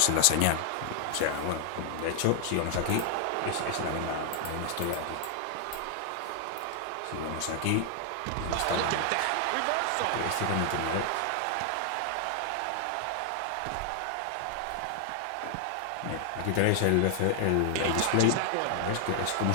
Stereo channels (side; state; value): both; different; correlation 0.00